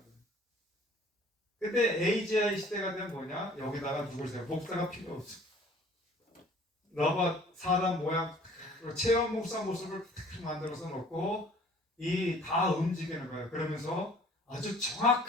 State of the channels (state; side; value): normal; both; correlation 0.52